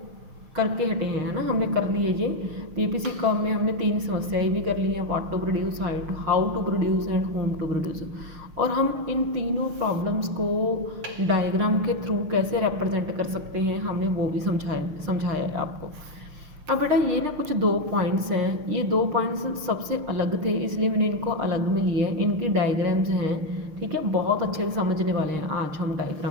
करके हटे हैं, है ना। हमने कर लिए ये पीपीसी कर्व में हमने 3 समस्याएं भी कर ली हैं, what to produce, how to produce and whom to produce. और हम इन तीनों प्रॉब्लम्स को डायग्राम के थ्रू कैसे रिप्रेजेंट कर सकते हैं हमने वो भी समझाया है आपको। अब बेटा ये ना कुछ 2 पॉइंट्स हैं, ये 2 पॉइंट्स सबसे अलग थे इसलिए मैंने इनको अलग में लिए हैं। इनकी डायग्राम्स हैं, ठीक है, बहुत अच्छे से समझने वाले हैं आज हम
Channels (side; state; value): left; late; 6.6 ms